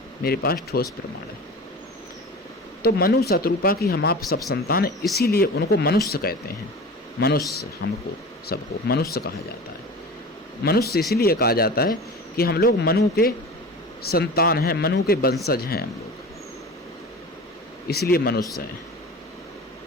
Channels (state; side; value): normal; both; correlation 0.34